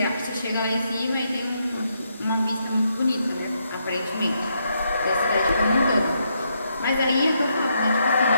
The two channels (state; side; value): inverted; both; correlation -0.78